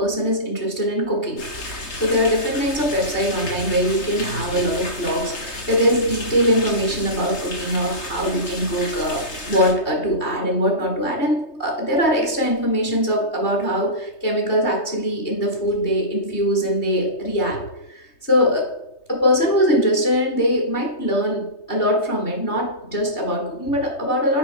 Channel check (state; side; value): late; right; 3.2 ms